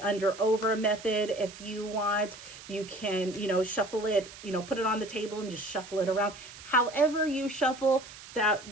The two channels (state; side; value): noise; right; hiss, 16 dB below the sound